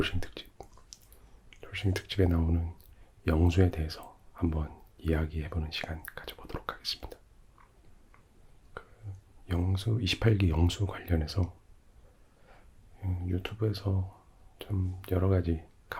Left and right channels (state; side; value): identical; both; correlation 1.00